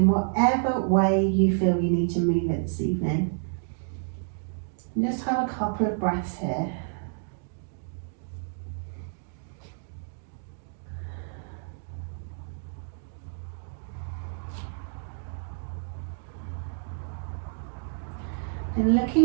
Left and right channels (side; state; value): left; silent; digital silence